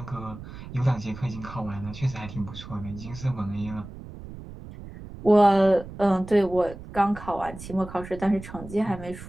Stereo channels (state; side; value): noise; right; rumble, 13 dB below the sound